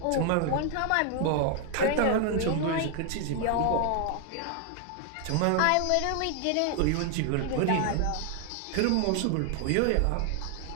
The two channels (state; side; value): different; both; correlation 0.00